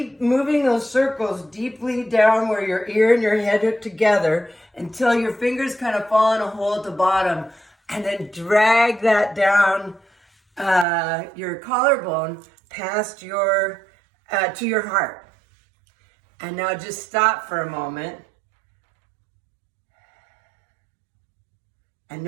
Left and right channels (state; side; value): drops out; left; at 10.9 s